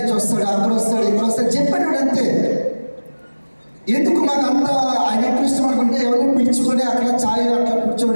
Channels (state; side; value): inverted; both; correlation -1.00